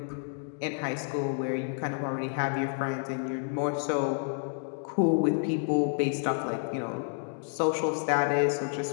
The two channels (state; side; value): silent; right; 58 dB below the other